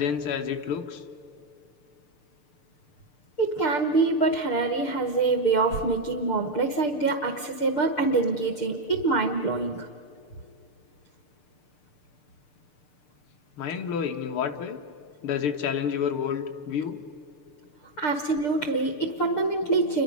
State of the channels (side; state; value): right; late; 6.7 ms